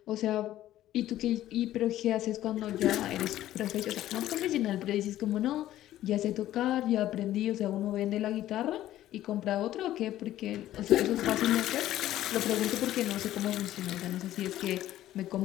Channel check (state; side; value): quieter; right; 13.6 dB